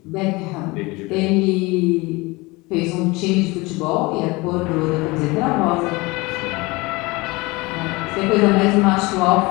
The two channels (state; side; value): quieter; right; 23.6 dB